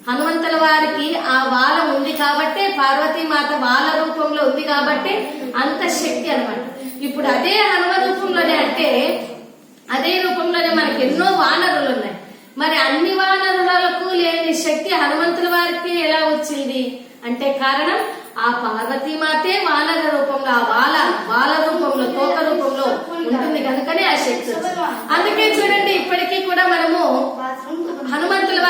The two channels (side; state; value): both; identical; correlation 1.00